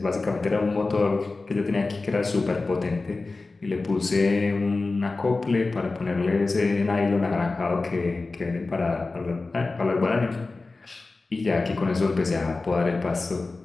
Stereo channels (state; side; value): quieter; right; 3.6 dB